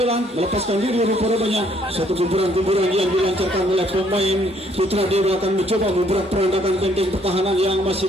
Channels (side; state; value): both; normal; correlation 0.66